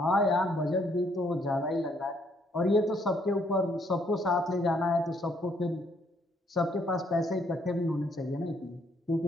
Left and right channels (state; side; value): normal; both; correlation 0.69